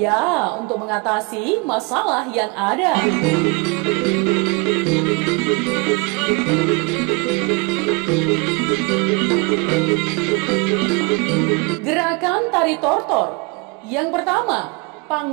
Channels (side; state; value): left; quieter; 29.2 dB